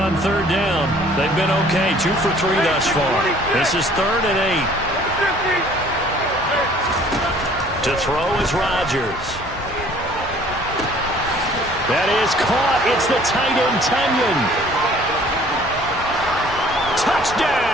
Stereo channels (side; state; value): both; normal; correlation 0.55